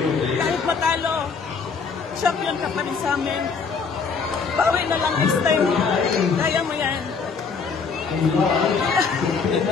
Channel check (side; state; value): right; quieter; 5.3 dB